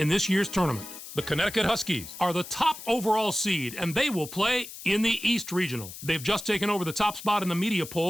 this year's tournament. The Connecticut Huskies are the top overall seed, and they will play in the East Regional. They've just taken over the top spot in the media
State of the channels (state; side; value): noise; left; hiss, 13 dB below the sound